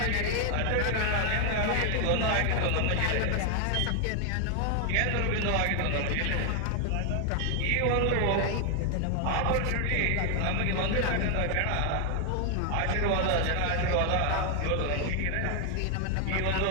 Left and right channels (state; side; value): different; both; correlation 0.00